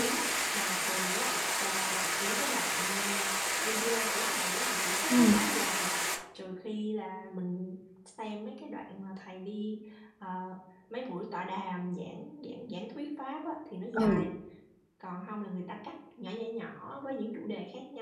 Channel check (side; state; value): both; identical; correlation 1.00